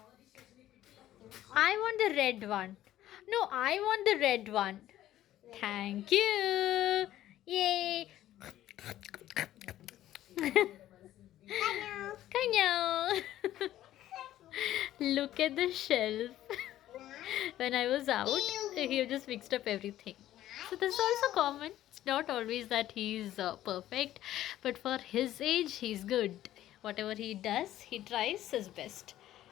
I want the red one. No, I want the red one. Thank you. Yay. Kano. Kanyo. Look at the shelf. When I was out, he just mixed up everything. So this is also common. It's not always that he's perfect, but for his age, he's good. Whatever he does, he tries his best.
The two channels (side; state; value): right; quieter; 13.3 dB